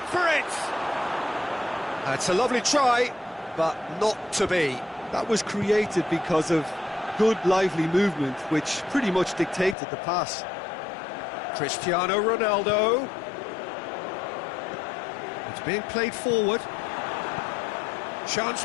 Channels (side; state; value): right; drops out; at 9.8 s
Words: for it! That's a lovely try, but not to be. That was created because of good, lively movement, which pretty much dictated the pass. Cristiano Ronaldo. It's being played forward. Chance